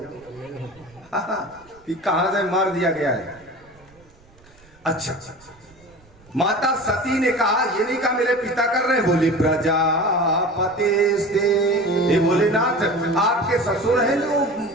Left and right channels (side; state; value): right; noise; rumble, 28 dB below the sound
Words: कि कहां से मार दिया गया है। अच्छा, माता सती ने कहा, ये नहीं कहा मेरे पिता कर रहे हैं, बोली प्रजापति से। ये भोलेनाथ आपके ससुर हैं जो